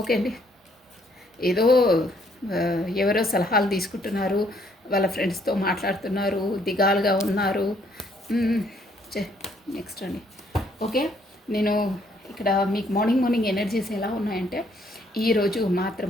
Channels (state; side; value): normal; both; correlation 0.67